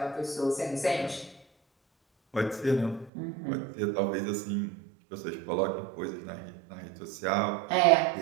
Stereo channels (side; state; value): left; drops out; at 3.1 s